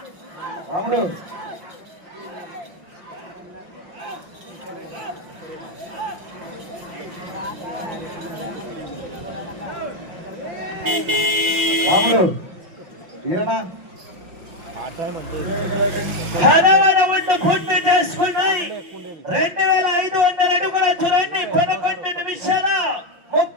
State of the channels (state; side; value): late; left; 5.9 ms